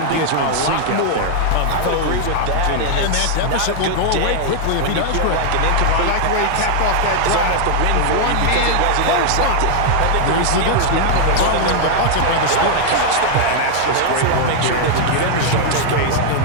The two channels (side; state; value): both; different; correlation 0.00